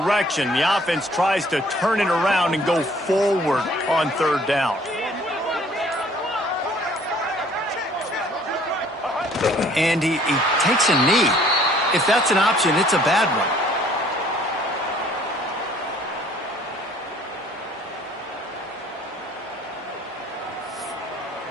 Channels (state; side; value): normal; both; correlation 0.57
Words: The offense tries to turn it around and go forward on 3rd down. And he takes a knee. If that's an option, it's a bad one.